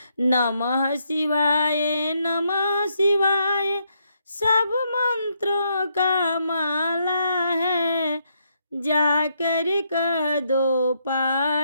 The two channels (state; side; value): inverted; both; correlation -0.76